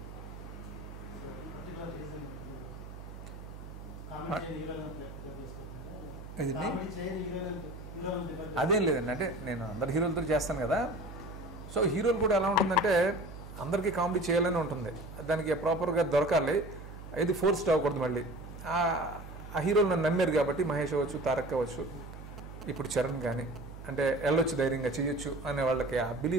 అదేం లేదండి, అంటే నేను అందరు హీరోలతో చేస్తాను కదా. సో హీరోలు కూడా ఎలా ఉంటుందంటే అందరికీ కామెడీ చేయాలని ఉంటుంది, దానికి ప్రాపర్గా దొరకాలి, ఇది ఫోర్స్డ్ అవ్వకూడదు. మళ్ళీ ఆ హీరోలు నన్ను నమ్మారు కాబట్టి, మహేష్ అవ్వచ్చు, తారక్ అవ్వచ్చు, ఇప్పుడు చరణ్ కానీ, అంటే వెళ్ళొచ్చు ధైర్యంగా చేయొచ్చు అనే వాళ్ళకి ఆ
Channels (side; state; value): right; noise; hum, 13 dB below the sound